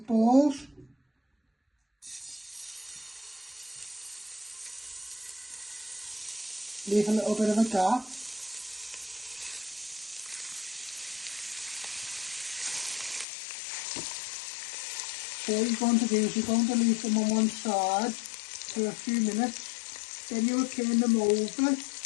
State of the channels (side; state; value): right; drops out; at 13.2 s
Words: Leave a little bit of a gap. So what you're going to do is you're going to leave them on one side for a few minutes. Then you'll turn them over